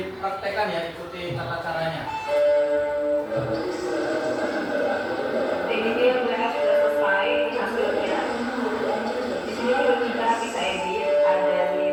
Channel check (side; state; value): both; identical; correlation 1.00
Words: ya, ikuti tata caranya. Ini dia mereka sudah selesai hasilnya. Di sini juga kita bisa edit, ada di